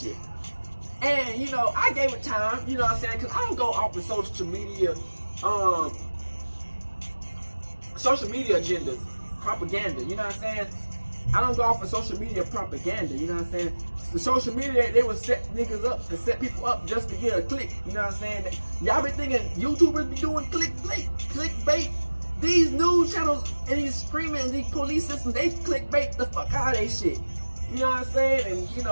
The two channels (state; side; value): inverted; both; correlation -1.00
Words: And, you know, I gave it time, you know what I'm saying? Because I don't go off of social media agendas, propaganda, you know what I'm saying? I don't go off of social media propaganda, you know what I'm saying? The social media, they would set niggas up and set people up just to get a click, you know what I'm saying? Y'all be thinking YouTubers be doing clickbait. These news channels and these screaming and these police systems, they clickbait the fuck out of they shit. You know what I'm saying? And, you